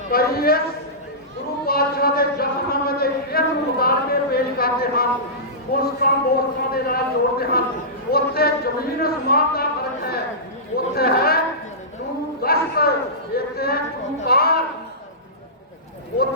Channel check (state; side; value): normal; both; correlation -0.19